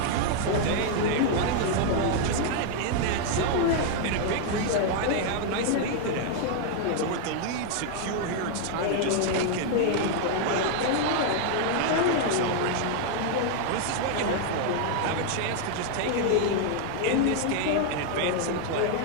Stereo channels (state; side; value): different; both; correlation 0.00